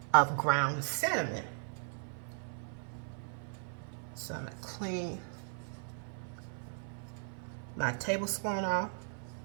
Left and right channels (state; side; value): silent; left; 53 dB below the other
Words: of ground cinnamon. So I'm going to clean my tablespoon off.